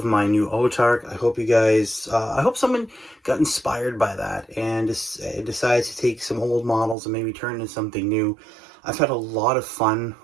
my new Autarch. I hope you guys, I hope someone got inspired by that and decides to take some old models and maybe turn into something new. I've had a lot of fun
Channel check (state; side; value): drops out; left; at 7.0 s